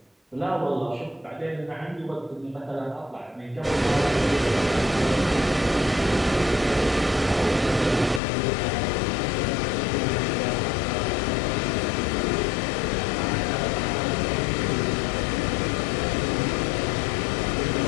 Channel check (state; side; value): drops out; right; at 8.2 s